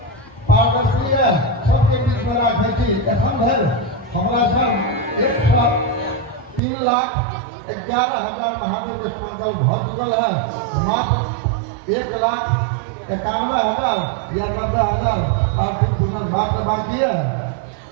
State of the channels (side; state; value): left; drops out; at 6.6 s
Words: पारदर्शी है, सबके बीच में राखै छी। एखन धरि हमरा सब 103,11,000 महादेव के संकल्प भऽ चुकल है, मात्र 1,91,000 या 90,000 पार्थिव पूजन मात्र बाकी है।